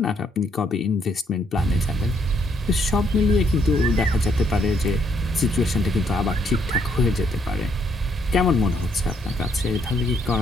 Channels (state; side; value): normal; both; correlation 0.71